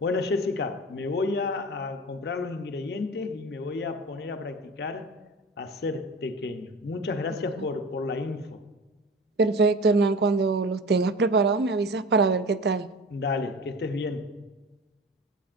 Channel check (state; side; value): normal; both; correlation 0.35